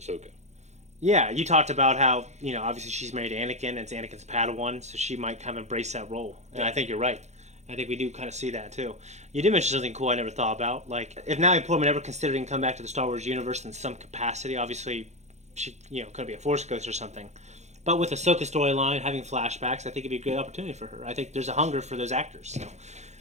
Yeah, you talked about how, obviously she's married to Anakin, and it's Anakin's Padawan, so she might kind of embrace that role. And I think you're right. I think we do kind of see that, too. You did mention something cool I never thought about. Like, if Natalie Portman ever considered come back to the Star Wars universe in some capacity, obviously she, could be a Force ghost or something. But with Ahsoka's storyline, having flashbacks, I think it'd be a good opportunity for her. I think there's a hunger for those actors. So.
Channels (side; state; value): left; late; 0.33 ms